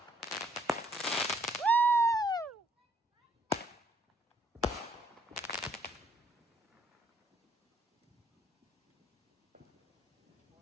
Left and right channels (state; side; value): normal; both; correlation 0.67